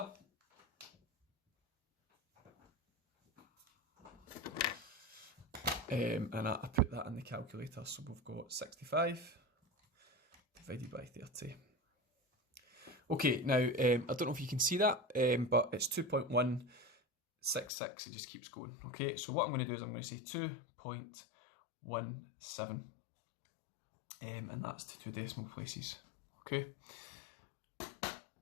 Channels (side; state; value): right; drops out; at 17.7 s